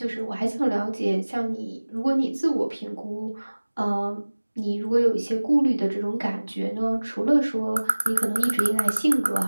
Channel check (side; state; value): both; inverted; correlation -1.00